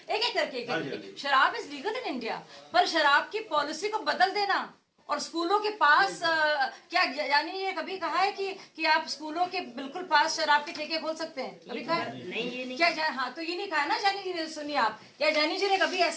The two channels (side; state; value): both; identical; correlation 1.00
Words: एक करके। शराब इज लीगल इन इंडिया, पर शराब की पॉलिसी को बदल देना, और स्कूलों के पास क्या यानी ये कभी कहा है कि आप स्कूलों के बिल्कुल पास शराब के ठेके खोल सकते हैं? कभी कहा नहीं, ये नहीं। क्या हाँ, तो ये नहीं कहा ना जानी जी ने। सुनिए आप, क्या जानी जी ने कभी